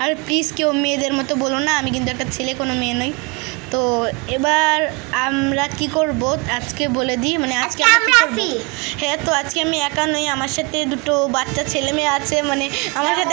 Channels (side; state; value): left; quieter; 29.3 dB